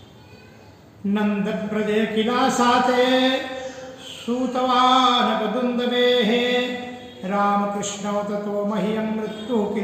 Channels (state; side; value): identical; both; correlation 1.00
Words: नंद प्रजय किला साते सूतवान दुंदवे रामकृष्ण ततो मह्यम मृत्यु